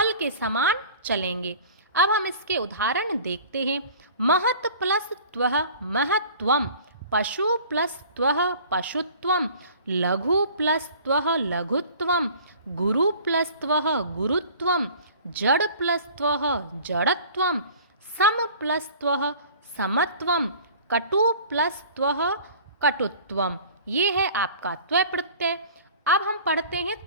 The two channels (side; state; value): both; inverted; correlation -0.46